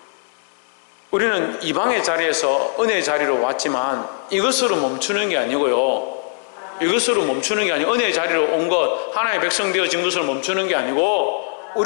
우리는 이방의 자리에서 은혜의 자리로 왔지만 이것으로 멈추는 게 아니고요. 이것으로 멈추는 게 아니고 은혜의 자리로 온 것, 하나님의 백성 되어진 것으로 멈추는 게 아니고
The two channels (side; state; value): right; silent; digital silence